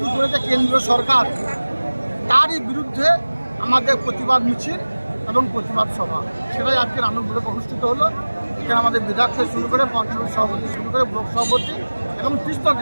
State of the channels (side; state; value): both; inverted; correlation -1.00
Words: করেছে কেন্দ্র সরকার, তারই বিরুদ্ধে আমাদের প্রতিবাদ মিছিল এবং প্রতিবাদ সভা, সেটাই আজকে নানুর ব্লকে অনুষ্ঠিত হলো। এখানে আমাদের বিধায়ক থেকে শুরু করে পঞ্চায়েত সভাপতি শুরু করে ব্লক সভাপতি এবং 30টা